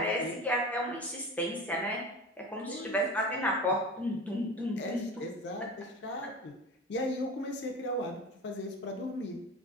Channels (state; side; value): normal; both; correlation 0.32